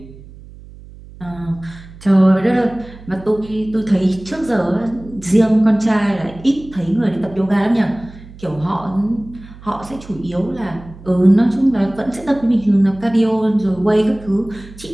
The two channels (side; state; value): right; noise; hum, 19 dB below the sound